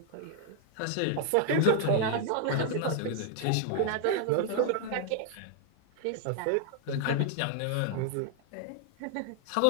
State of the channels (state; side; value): different; both; correlation 0.00